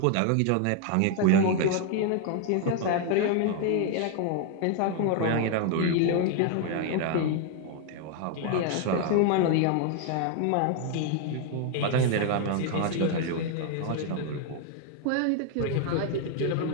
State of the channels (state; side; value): different; both; correlation 0.00